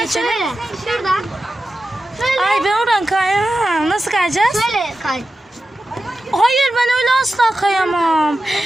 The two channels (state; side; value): normal; both; correlation 0.92